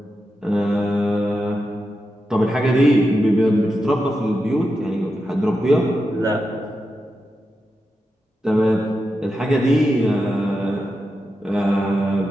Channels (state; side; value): normal; both; correlation 0.88